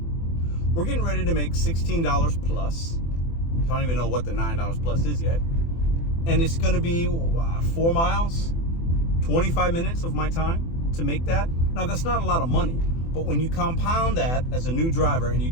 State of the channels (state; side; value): late; right; 24 ms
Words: We're getting ready to make $16 plus. I don't even know what the $9 plus is yet. And it's going to be 4 miles, 25 minutes of my time to make that. Now, that's not a lot of money, but when you compound that as a new driver and you